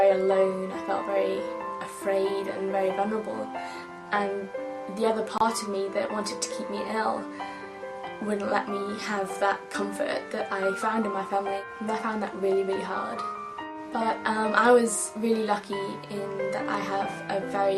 alone, I felt very afraid and very vulnerable, and the other part of me that wanted to keep me ill wouldn't let me have that comfort that I found in my family, and I found that really, really hard. But I was really lucky in that I have a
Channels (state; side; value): identical; both; correlation 1.00